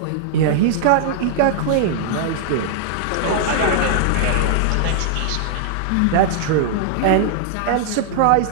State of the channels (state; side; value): different; both; correlation -0.01